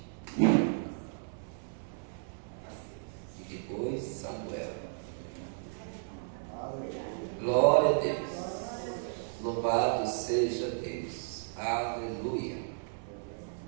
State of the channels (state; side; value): silent; left; digital silence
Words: E depois, Samuel. Glória a Deus. Louvado seja Deus. Aleluia.